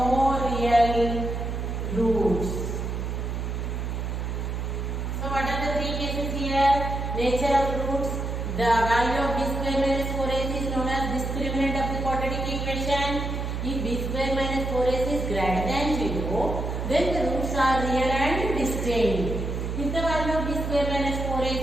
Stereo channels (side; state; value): right; noise; hum, 3 dB below the sound